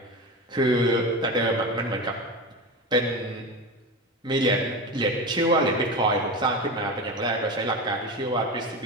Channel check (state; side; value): normal; both; correlation 0.23